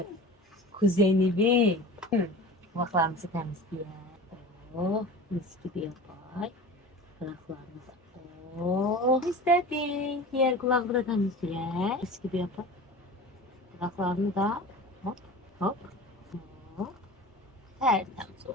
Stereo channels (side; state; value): both; normal; correlation 0.36